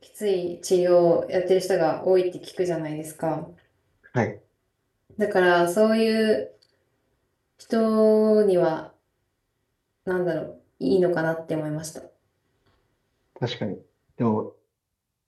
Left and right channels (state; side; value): identical; both; correlation 1.00